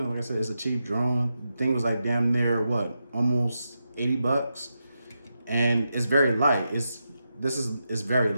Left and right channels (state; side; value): inverted; both; correlation -0.87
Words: know, like I said, it's a cheap drone. The thing was like damn near what, almost $80, and it's very light. It's very